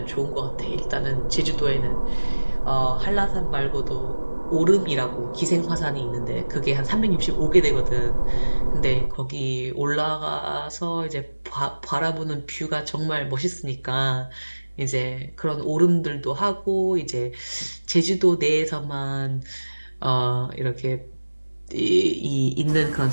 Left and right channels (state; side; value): inverted; both; correlation -1.00